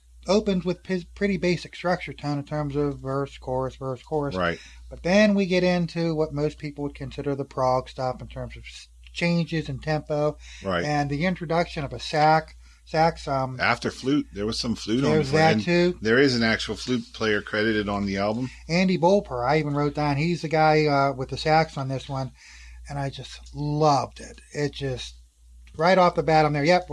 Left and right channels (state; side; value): identical; both; correlation 1.00